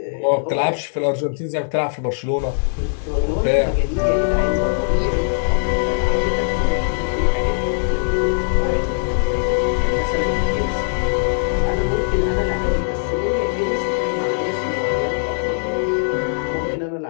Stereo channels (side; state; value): right; silent; 64 dB below the other